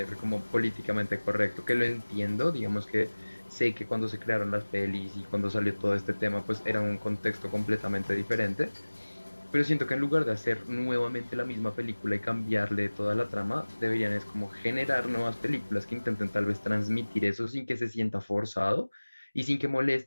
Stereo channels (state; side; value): inverted; both; correlation -1.00